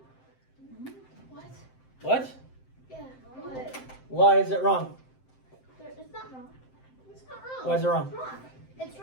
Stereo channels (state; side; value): late; right; 7.7 ms